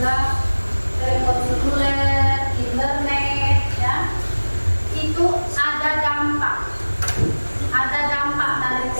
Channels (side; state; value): both; inverted; correlation -1.00